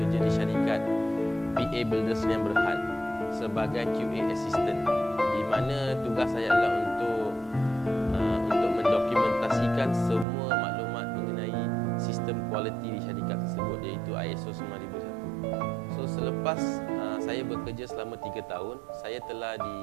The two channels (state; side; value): drops out; left; at 10.2 s